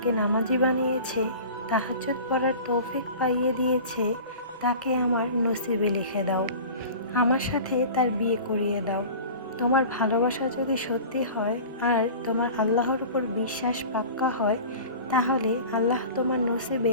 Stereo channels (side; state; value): both; inverted; correlation -0.38